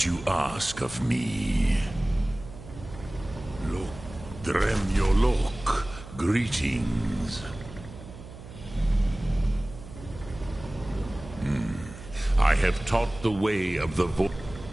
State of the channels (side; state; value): right; noise; hum, 15 dB below the sound